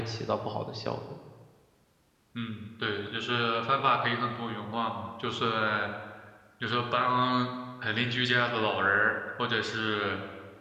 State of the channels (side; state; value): both; identical; correlation 1.00